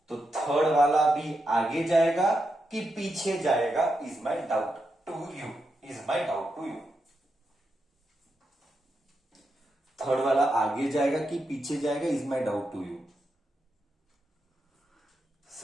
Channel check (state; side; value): normal; both; correlation 0.85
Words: तो थर्ड वाला भी आगे जाएगा कि पीछे जाएगा, is my doubt to you, is my doubt to you. Third वाला आगे जाएगा कि पीछे जाएगा, is my doubt to you.